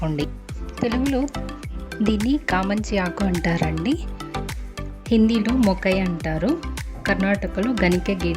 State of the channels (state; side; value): identical; both; correlation 1.00